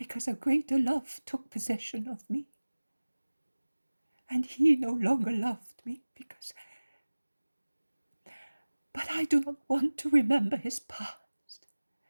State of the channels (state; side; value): inverted; both; correlation -1.00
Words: a greater love took possession of me. And he no longer loved me because... But I do not want to remember his past.